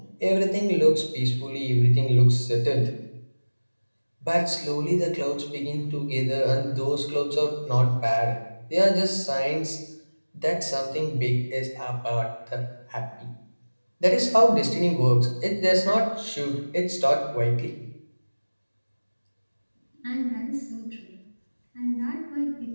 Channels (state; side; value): inverted; both; correlation -1.00